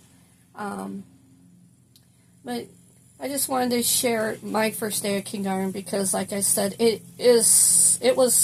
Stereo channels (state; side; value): identical; both; correlation 1.00